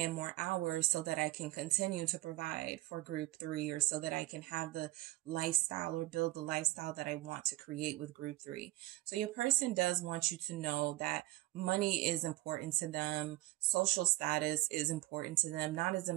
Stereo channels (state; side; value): quieter; left; 17.3 dB